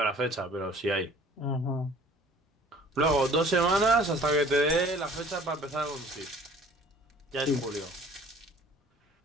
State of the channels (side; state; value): both; normal; correlation 0.51